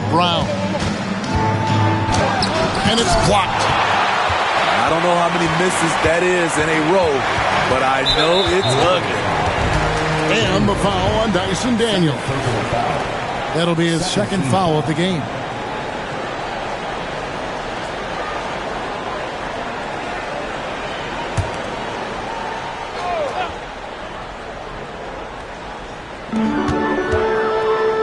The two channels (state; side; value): identical; both; correlation 1.00